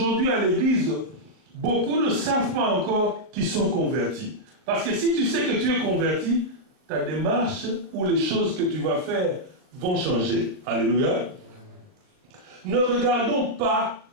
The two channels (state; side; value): late; left; 38 ms